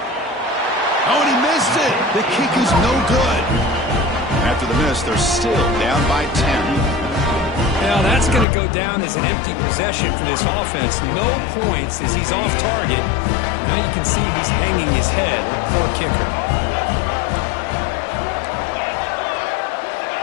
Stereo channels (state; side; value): drops out; right; at 8.5 s